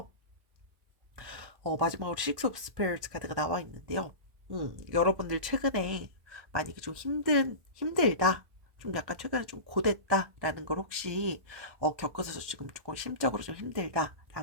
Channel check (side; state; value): left; late; 1.1 ms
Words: 마지막으로 식스 오브 스페어스 카드가 나와 있는데요. 여러분들 최근에 만약에 좀 힘들다. 좀 약간 최근에 좀 고됐다라는 걸 혹시 겪어서 지금 조금 심적으로 좀